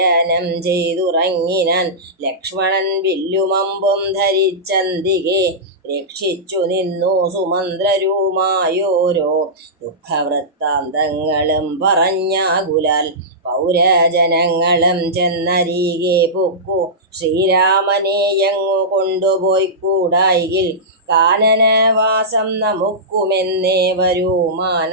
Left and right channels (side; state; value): both; normal; correlation -0.15